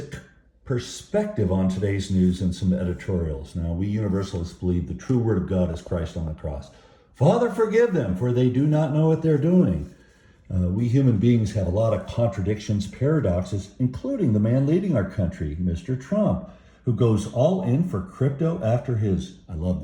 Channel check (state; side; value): identical; both; correlation 1.00